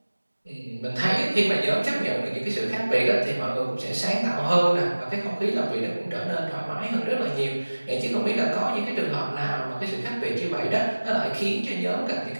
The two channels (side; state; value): both; inverted; correlation -1.00